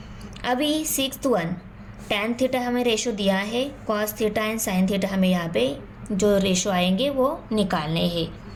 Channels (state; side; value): identical; both; correlation 1.00